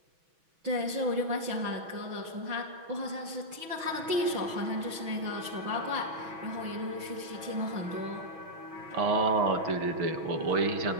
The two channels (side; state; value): left; late; 6.1 ms